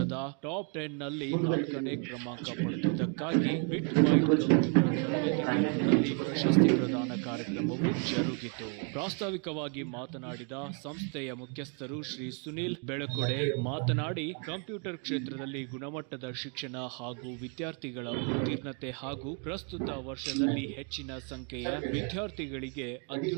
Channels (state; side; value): quieter; left; 38.5 dB